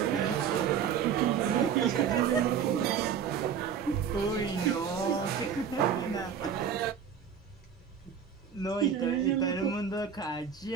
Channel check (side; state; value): left; quieter; 7.6 dB